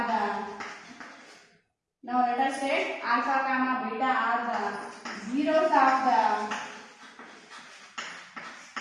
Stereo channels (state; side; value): identical; both; correlation 1.00